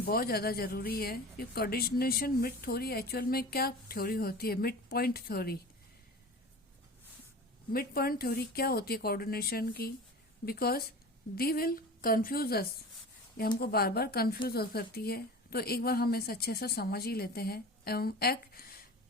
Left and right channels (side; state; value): both; normal; correlation 0.35